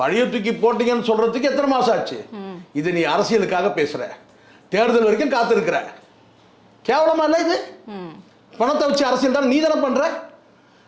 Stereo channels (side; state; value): both; identical; correlation 1.00